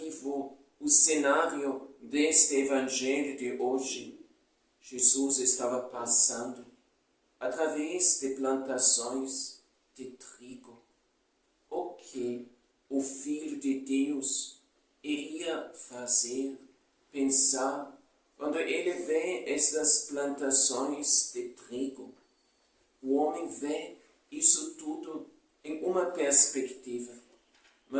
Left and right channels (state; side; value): identical; both; correlation 1.00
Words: o cenário deste Evangelho de hoje. Jesus estava passando através de plantações de trigo. O que o Filho de Deus iria fazer, pensar, quando ele vê estas plantações de trigo? O homem vê isso tudo em uma perspectiva,